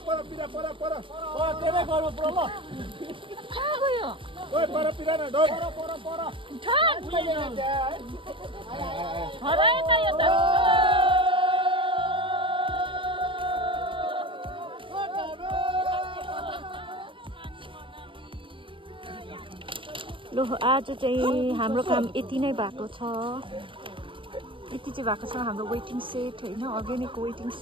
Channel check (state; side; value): late; left; 0.25 ms